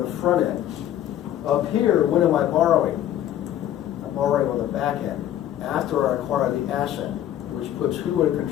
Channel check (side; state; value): right; quieter; 11.7 dB